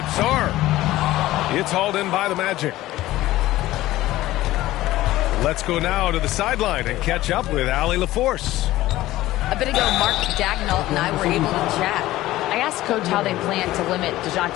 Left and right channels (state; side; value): quieter; right; 16.2 dB